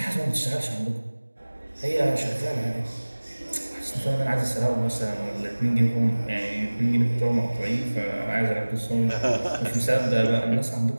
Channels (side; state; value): both; inverted; correlation -1.00